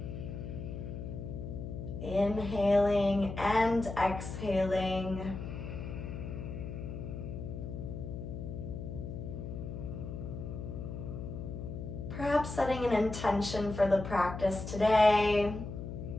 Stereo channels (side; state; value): left; noise; hum, 7 dB below the sound